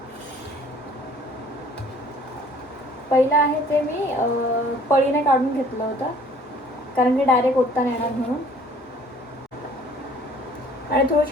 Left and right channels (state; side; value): normal; both; correlation 0.55